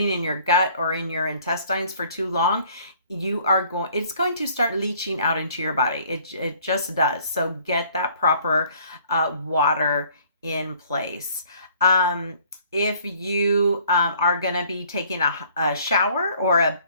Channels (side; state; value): both; inverted; correlation -0.58